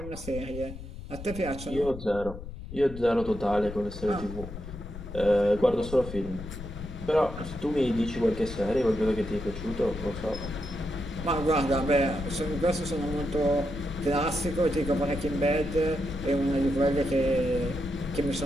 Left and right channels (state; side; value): noise; left; rumble, 11 dB below the sound